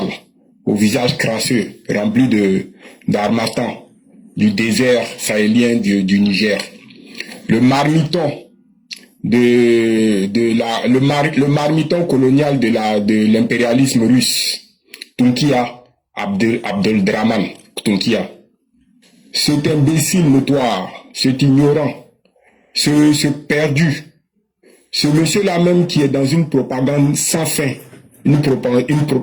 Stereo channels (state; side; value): identical; both; correlation 1.00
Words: au visage crasseux, rempli d'harmattan, du désert sahélien du Niger. Le marmiton le marmiton colonial de l'impérialisme russe, Tunkia Abdeldraman Tunkia. Cet imbécile notoire, cet ignorant, ce perdu, ce monsieur-là même qui est dans une propagande sans fin, une